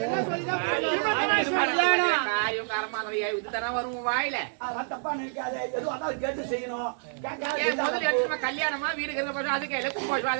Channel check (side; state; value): left; silent; 59 dB below the other